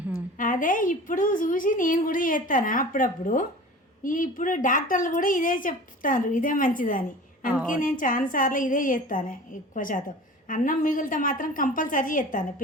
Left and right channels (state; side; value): normal; both; correlation 0.39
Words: అదే ఇప్పుడు చూసి నేను కూడా చేస్తాను అప్పుడప్పుడు. ఇప్పుడు డాక్టర్లు కూడా ఇదే చెప్తారు, ఇదే మంచిదని. అందుకే నేను చాలా సార్లు ఇదే చేస్తాను. ఎక్కువ శాతం అన్నం మిగిలితే మాత్రం కంపల్సరీ చేస్తాను